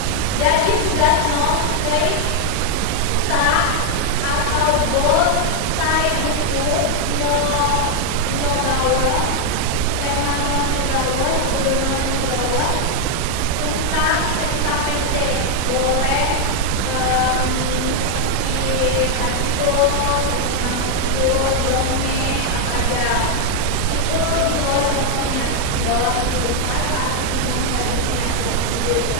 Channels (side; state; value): both; different; correlation 0.00